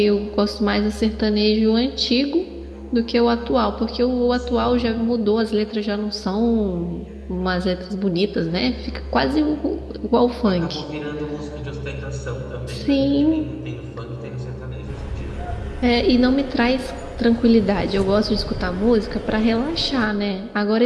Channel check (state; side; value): identical; both; correlation 1.00